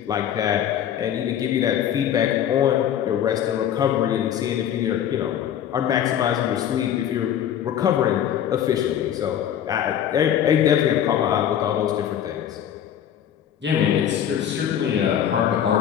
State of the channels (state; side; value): quieter; right; 9.8 dB